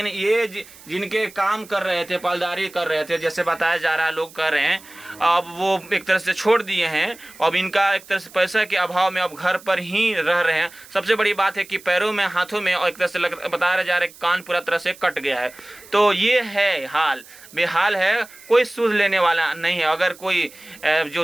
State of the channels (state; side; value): noise; right; hiss, 21 dB below the sound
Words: ये जिनके काम कर रहे थे, पालदारी कर रहे थे, जैसे बताया जा रहा है, लोग कर रहे हैं, अब वो एक तरह से छोड़ दिए हैं। अब इनका एक तरह से पैसा के अभाव में अब घर पर ही रह रहे हैं। सबसे बड़ी बात है कि पैरों में, हाथों में, और एक तरह से बताया जा रहा है कान पूरा तरह से कट गया है। तो ये है हाल, बेहाल है, कोई सूद लेने वाला नहीं है। अगर कोई जो